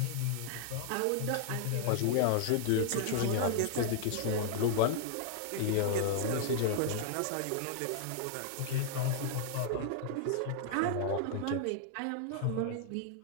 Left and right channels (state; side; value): different; both; correlation 0.00